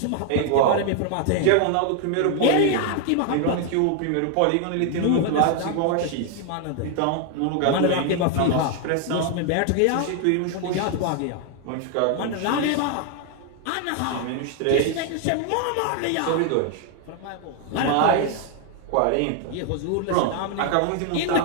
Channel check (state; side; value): different; both; correlation 0.00